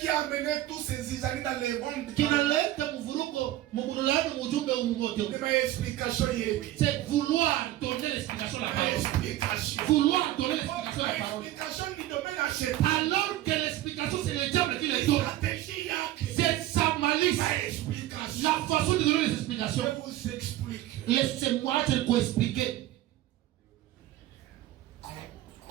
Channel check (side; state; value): left; quieter; 14.7 dB